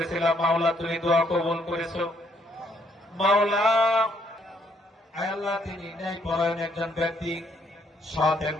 মাওলা, তুমি দোয়া কবুল করেছো মাওলা। আয় আল্লাহ, তিনি ন্যায়পরায়ণ একজন ব্যক্তি, সৎ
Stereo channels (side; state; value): both; normal; correlation 0.69